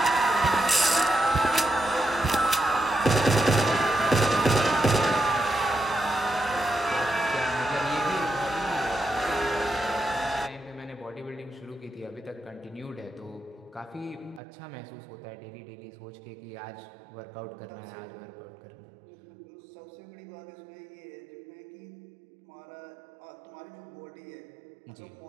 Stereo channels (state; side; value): drops out; left; at 14.4 s